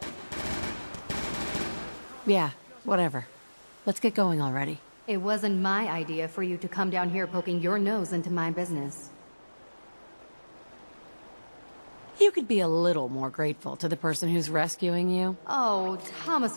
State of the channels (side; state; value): both; inverted; correlation -1.00